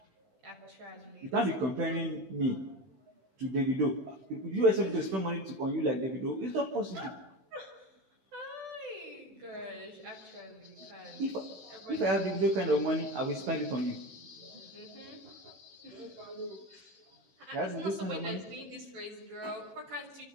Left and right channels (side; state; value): left; late; 16 ms